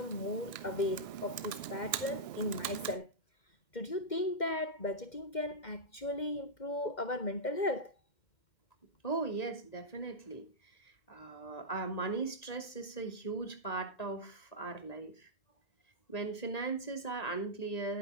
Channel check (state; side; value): late; right; 1.6 ms